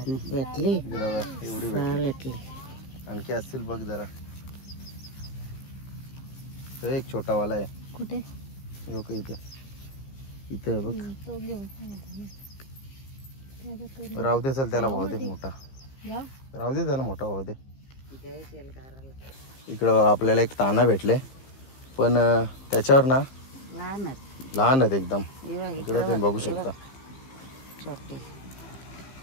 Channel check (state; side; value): late; right; 15 ms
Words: बघा एवढी भेटली. आणखी असतील बघ जरा. तो एक छोटा वाला आहे. कुठे? इथे इथे बघ. राहू दे चल, त्याला भाव दे मोठा. राहू दे त्याला मोठा भाव दे. इकडं आपल्याला एक ताना भेटले, पण त्याच्यावर ना लहान आहेत एकदम. इकडं तुम्ही बघू शकता,